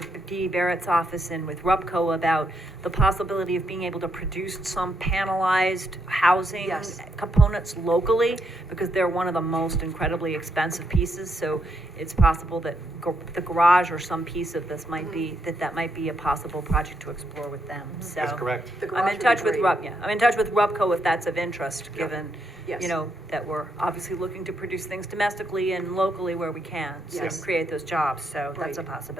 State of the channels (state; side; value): normal; both; correlation 0.78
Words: Dee Barrett's office and with RUPCO about the possibility of being able to produce some panelized housing Yes. components locally, because they're one of the most incredibly expensive pieces, so it's possible that the garage or some piece of this might be, that might be a possible project to explore with them, so. That's correct. The garage I'm in would be touch with great. I'm in touch with RUPCO if that's of interest, Yeah. given, Yes. that we're obviously looking to produce things domestically and locally where we can, so Yes. create those jobs, so that's a Right.